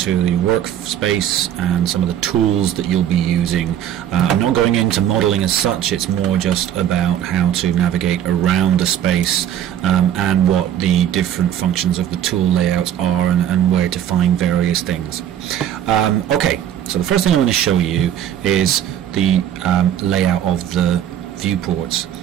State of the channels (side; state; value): left; quieter; 10.4 dB